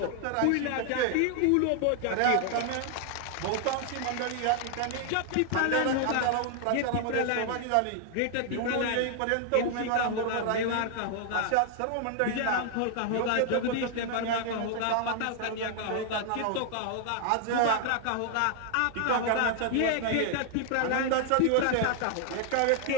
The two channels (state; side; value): different; both; correlation 0.00